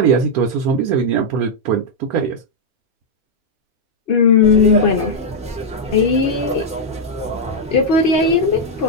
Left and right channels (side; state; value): both; normal; correlation -0.03